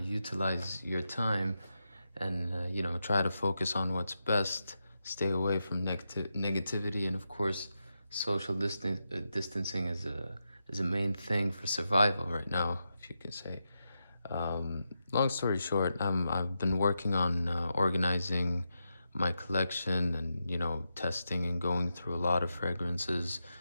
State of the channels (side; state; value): both; inverted; correlation -0.88